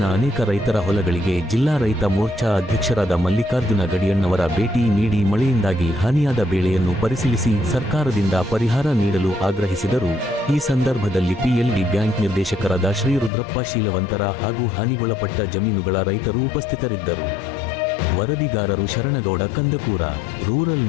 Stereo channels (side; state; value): right; drops out; at 13.3 s